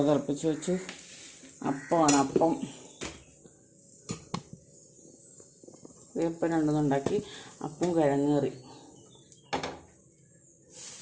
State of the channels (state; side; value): identical; both; correlation 1.00